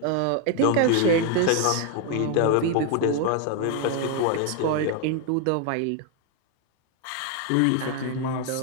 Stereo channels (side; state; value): both; different; correlation 0.01